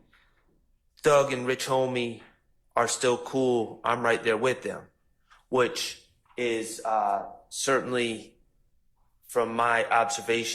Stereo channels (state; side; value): identical; both; correlation 1.00